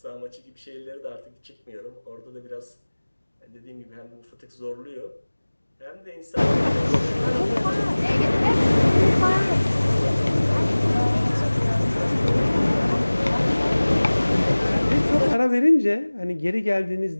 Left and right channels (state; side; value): inverted; both; correlation -1.00